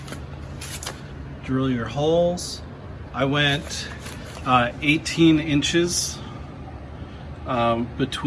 drill your holes. I went 18 inches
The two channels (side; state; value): both; identical; correlation 1.00